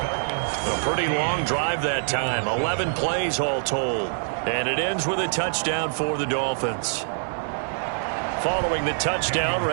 pretty long drive that time. 11 plays all told. And it ends with a touchdown for the Dolphins. Following the touchdown,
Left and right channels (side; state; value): left; silent; digital silence